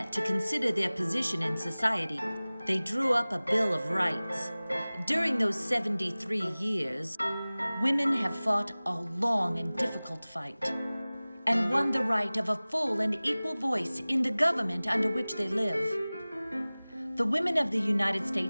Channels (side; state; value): both; inverted; correlation -0.99